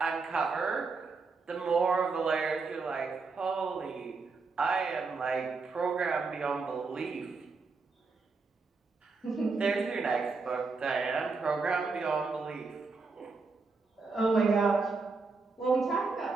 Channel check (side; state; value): left; quieter; 4.3 dB